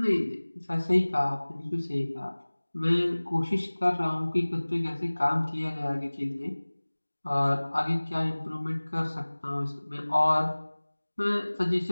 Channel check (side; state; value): both; inverted; correlation -1.00